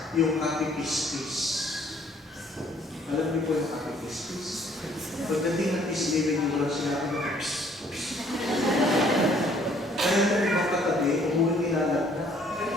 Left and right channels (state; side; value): normal; both; correlation 0.61